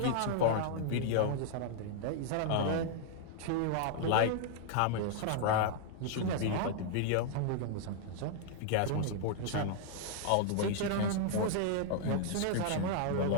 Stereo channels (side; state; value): both; different; correlation -0.01